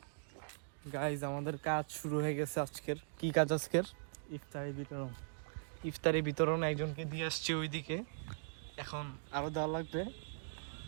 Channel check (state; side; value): silent; left; digital silence